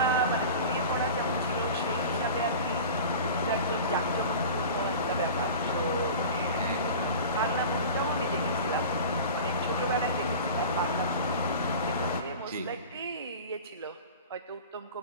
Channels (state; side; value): inverted; both; correlation -0.36